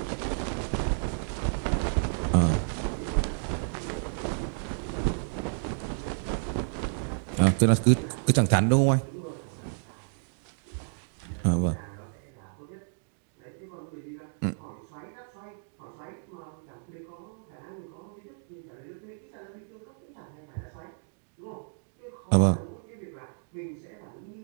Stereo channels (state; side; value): silent; left; digital silence